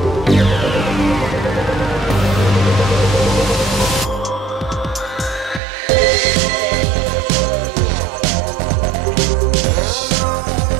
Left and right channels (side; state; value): left; drops out; at 5.6 s